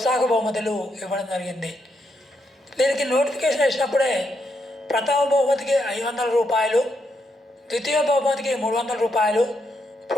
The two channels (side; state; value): both; normal; correlation 0.79